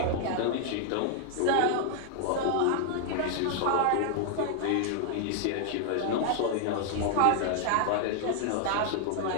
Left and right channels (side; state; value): both; different; correlation 0.00